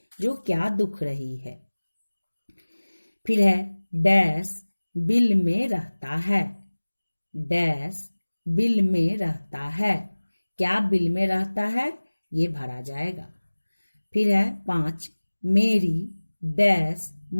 जो क्या दुख रही है। फिर है डैश बिल में रहता है। डैश बिल में रहता है। क्या बिल में रहता है ये भरा जाएगा। फिर है 5 मेरी डैश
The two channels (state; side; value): inverted; both; correlation -1.00